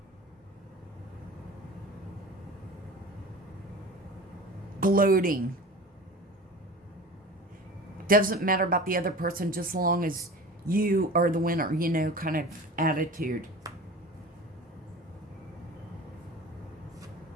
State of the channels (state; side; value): normal; both; correlation 0.37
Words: Gloating. Doesn't matter about the other person, just as long as you are the winner, kind of attitude.